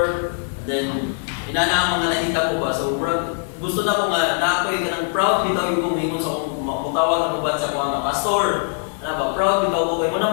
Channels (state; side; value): silent; right; 65 dB below the other